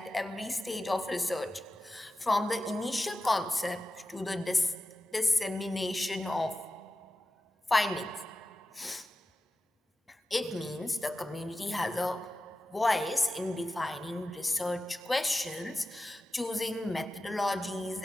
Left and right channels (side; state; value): both; normal; correlation 0.93